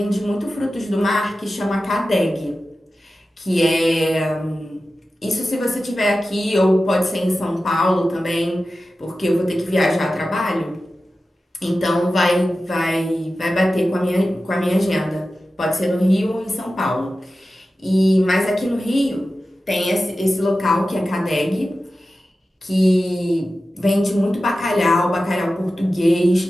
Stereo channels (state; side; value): normal; both; correlation 0.94